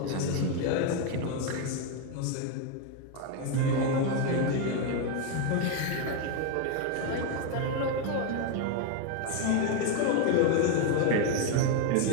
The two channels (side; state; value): both; different; correlation 0.01